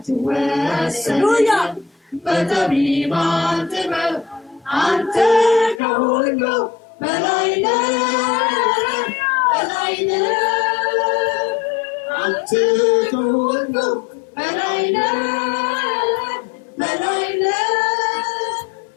በጠቢባን ጥበብ አንተ ከሁሉ በላይ ነህ በላይ ነህ አንተ ከሁሉ በላይ ነህ በላይ ነህ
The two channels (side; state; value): right; drops out; at 5.8 s